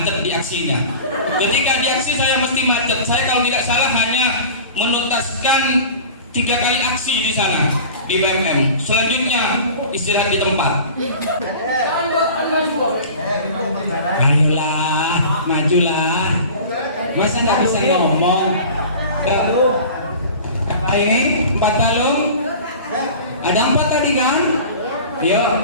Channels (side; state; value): both; inverted; correlation -0.39